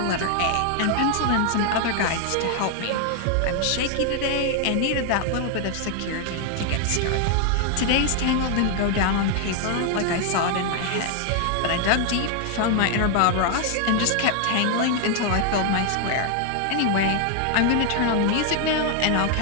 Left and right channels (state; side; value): different; both; correlation 0.00